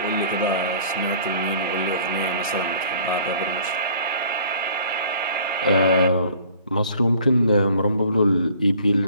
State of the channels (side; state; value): both; inverted; correlation -0.53